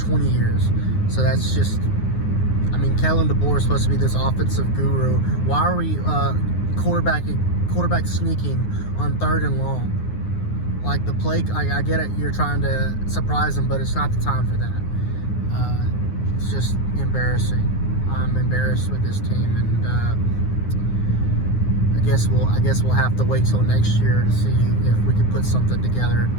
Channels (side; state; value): right; late; 9.6 ms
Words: 20 years. So that's just, I mean, Kellen DeBoer is supposed to be this offensive guru. Why are we quarterback sneaking on 3rd and long? Like, the play, I get it, you're trying to surprise them, but it's not the time for that. It's just embarrassing. I'm embarrassed with this team, and I guess we'll have to wait till next year to see if we can put something together,